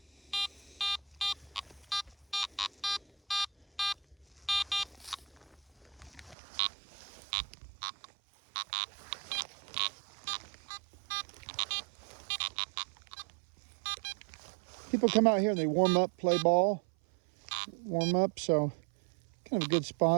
People come out here and they warm up, play ball, warm up, so kind of a good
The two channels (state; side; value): drops out; left; at 6.4 s